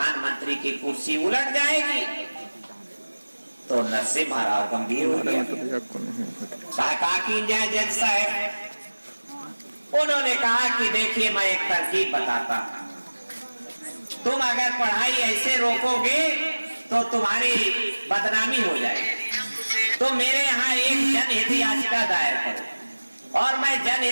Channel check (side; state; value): both; inverted; correlation -1.00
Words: की कुर्सी उलट जाएगी। तो नरसिम्हा राव गंभीर हो गया, कहा कि जज साहब, उन्होंने कहा कि देखिए मैं एक तरकीब बताता हूं, तुम अगर पढ़ाई ऐसे रोकोगे तो तुम्हारी बदनामी हो जाएगी। तो मेरे यहाँ एक जनहित याचिका दायर करो और मैं